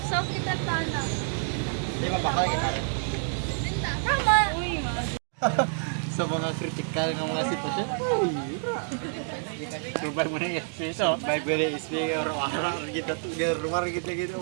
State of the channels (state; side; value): silent; left; digital silence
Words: Soft kita tana. Di ba bakal kita? Tama. Sa mga critical ng mga sitwasyon. Subay mo na yung piso. Bible is big or wara kita tu. Rumah kita gitu